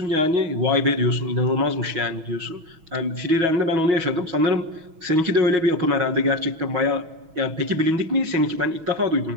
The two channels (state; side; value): late; left; 6.2 ms